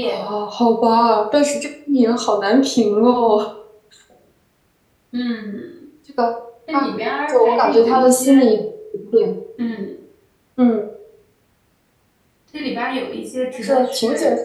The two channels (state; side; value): identical; both; correlation 1.00